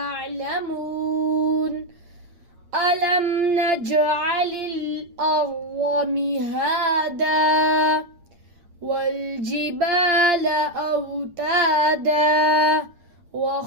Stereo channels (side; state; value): left; late; 8.6 ms